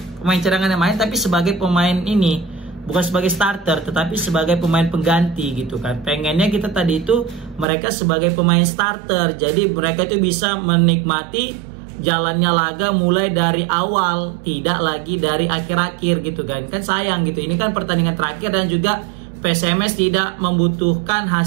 pemain cadangan yang main tapi sebagai pemain ini bukan sebagai starter tetapi sebagai pemain pengganti gitu kan. Pengennya kita tadi itu mereka sebagai pemain starter, jadi mereka itu bisa menikmati jalannya laga mulai dari awal, tidak lagi dari akhir-akhir gitu kan. Kan sayang gitu, ini kan pertandingan terakhir dan juga PSMS tidak membutuhkan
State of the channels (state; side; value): drops out; left; at 7.7 s